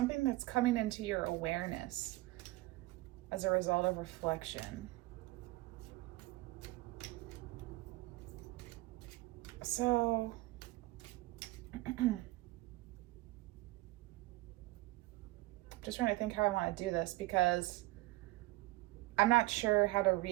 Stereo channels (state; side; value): quieter; left; 19.8 dB